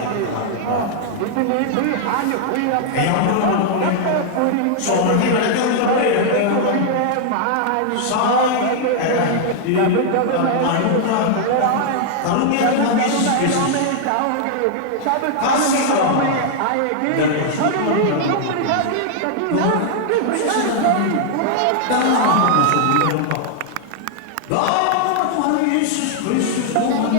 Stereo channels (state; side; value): different; both; correlation -0.01